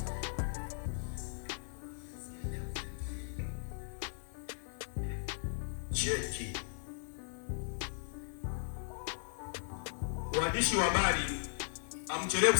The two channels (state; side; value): silent; right; 53 dB below the other